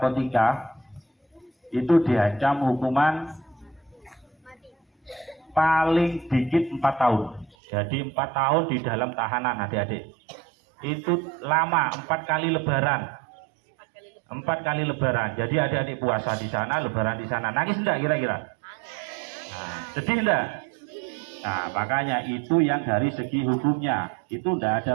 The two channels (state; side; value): drops out; left; at 7.6 s